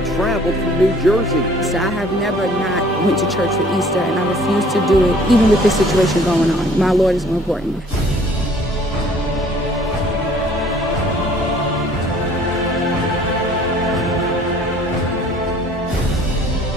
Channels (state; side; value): normal; both; correlation 0.55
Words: traveled from New Jersey. So I have never not went to church for Easter, and I refuse to do it, even with this situation going on. My Lord is more important.